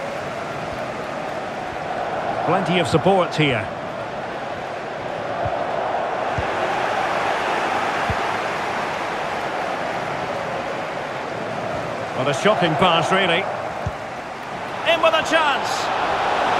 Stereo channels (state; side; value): identical; both; correlation 1.00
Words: Plenty of support here. What a shocking pass, really. In with a chance.